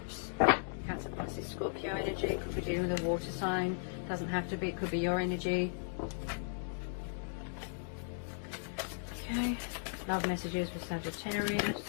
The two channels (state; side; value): silent; right; digital silence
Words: Cancer, Pisces, Scorpio energy. Could be dealing with a water sign. Doesn't have to be. It could be your energy. Okay, love messages for